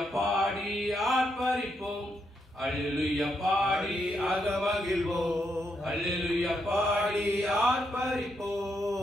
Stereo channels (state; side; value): normal; both; correlation 0.80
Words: பாடி ஆர்ப்பரிப்போம், அல்லேலூயா பாடி அகமகிழ்வோம். அல்லேலூயா பாடி